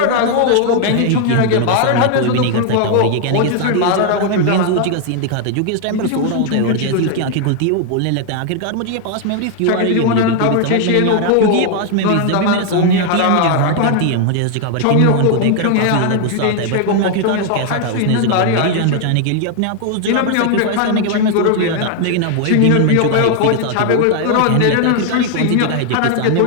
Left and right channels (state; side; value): different; both; correlation 0.00